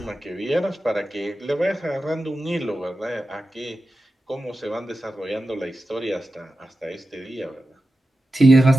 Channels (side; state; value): both; normal; correlation 0.92